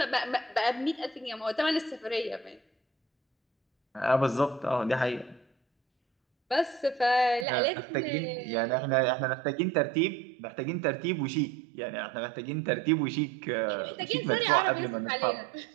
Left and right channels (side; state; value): left; drops out; at 7.5 s